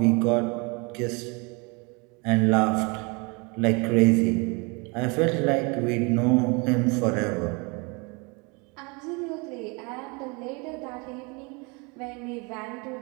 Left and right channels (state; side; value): quieter; left; 29.9 dB